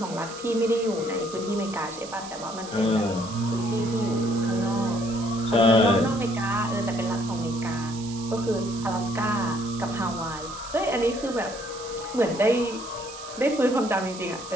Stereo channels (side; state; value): right; noise; hiss, 14 dB below the sound